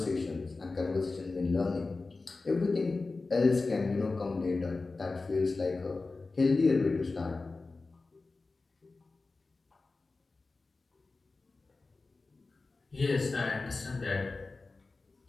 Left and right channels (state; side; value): quieter; right; 3.7 dB